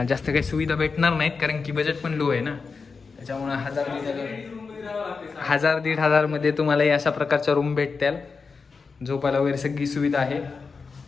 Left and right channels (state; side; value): quieter; right; 4.9 dB